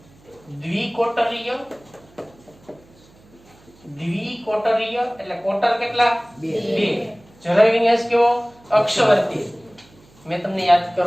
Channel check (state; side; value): noise; right; hum, 28 dB below the sound